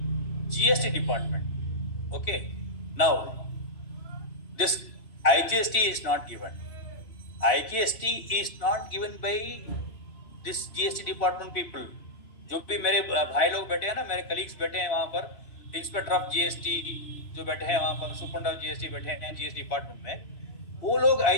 GST department. Okay. Now, this IGST is not given. IGST is not given by this GST department people. जो भी मेरे भाई लोग बैठे हैं ना, मेरे colleagues बैठे हैं वहाँ पर, इंस्पेक्टर ऑफ जीएसटी जो बैठे हैं वहाँ पर, सुपरडेंट ऑफ जीएसटी बैठे हैं जीएसटी डिपार्टमेंट में, वो लोग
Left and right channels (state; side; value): late; right; 3.0 ms